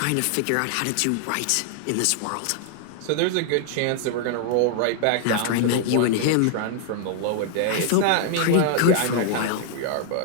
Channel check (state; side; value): different; both; correlation 0.00